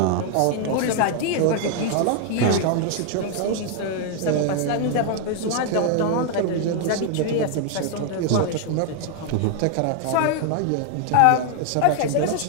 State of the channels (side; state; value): both; different; correlation 0.00